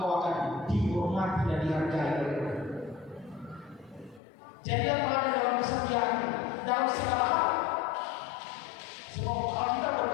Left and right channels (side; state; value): right; drops out; at 4.2 s